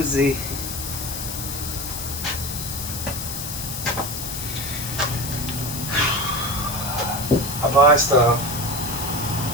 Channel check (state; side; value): noise; left; hiss, 6 dB below the sound